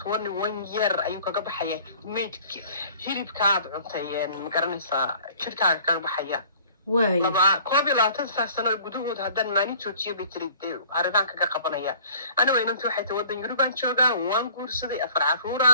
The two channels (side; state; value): both; inverted; correlation -0.50